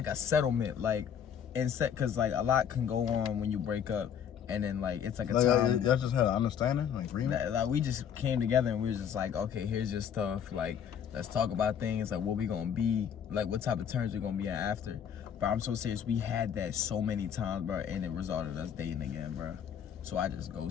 a settlement, like, cause like a lot can go on when you break up. And then, like, it's like a time. Y'all just had an understanding, like agreement. Like, we just came together and we was just like, okay, here's your stuff. Like, let's talk about things, like what we gonna be, like what type of terms we're gonna be at after. But I'm so serious, we had that so many times, bro, and it resulted in us dating again, bro. So I just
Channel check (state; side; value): quieter; right; 8.3 dB